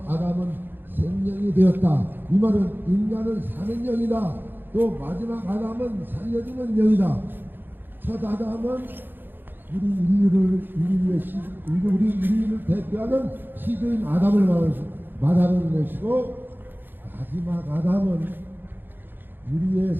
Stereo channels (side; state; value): left; late; 0.096 ms